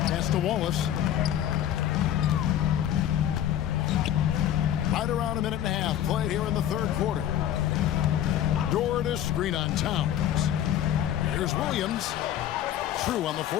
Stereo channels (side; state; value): right; quieter; 11.1 dB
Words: Pass to Wallace. Right around a minute and a half played here in the third quarter. Door to screen on Towns. Here's Williams. True on the